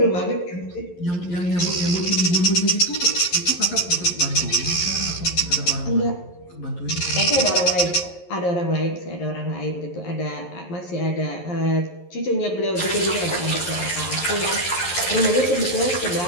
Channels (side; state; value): right; late; 11 ms